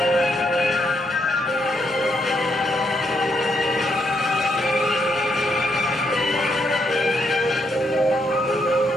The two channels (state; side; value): normal; both; correlation 0.76